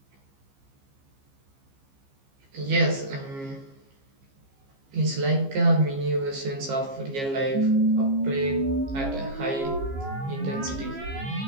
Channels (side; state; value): left; late; 15 ms